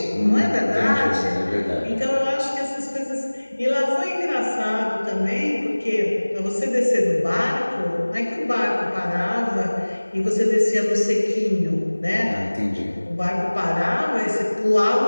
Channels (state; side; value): inverted; both; correlation -1.00